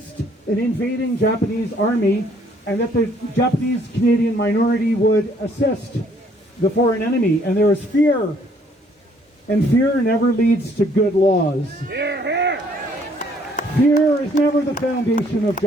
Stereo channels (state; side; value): normal; both; correlation 0.64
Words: an invading Japanese army, and that the Japanese Canadian minority would assist the foreign enemy. And there was fear, and fear never leads to good laws. Fear is never the foundation of